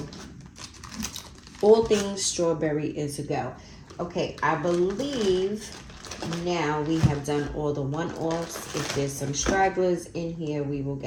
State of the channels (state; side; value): identical; both; correlation 1.00